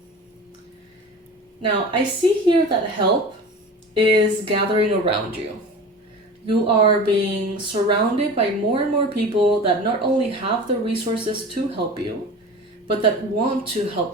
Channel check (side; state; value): both; normal; correlation 0.35